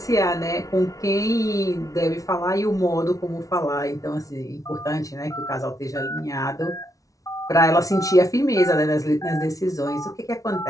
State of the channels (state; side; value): late; right; 0.17 ms